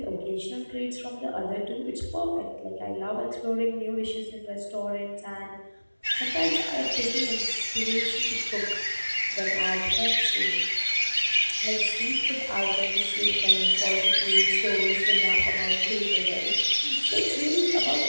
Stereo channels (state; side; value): inverted; both; correlation -1.00